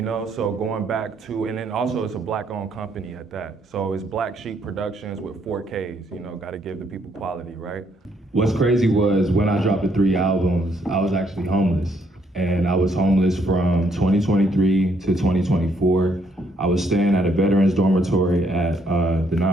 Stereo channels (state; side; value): normal; both; correlation 0.71